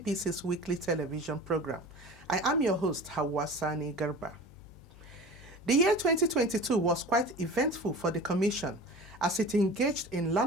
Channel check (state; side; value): noise; left; hum, 21 dB below the sound